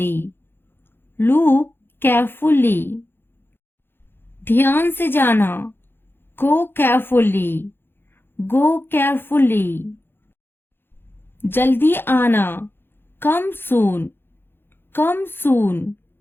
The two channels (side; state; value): right; late; 0.10 ms